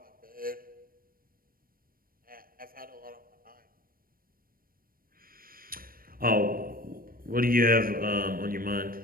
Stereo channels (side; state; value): left; late; 0.42 ms